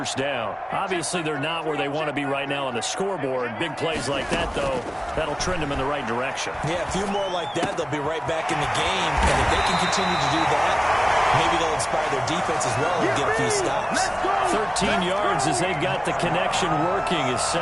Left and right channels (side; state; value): both; identical; correlation 1.00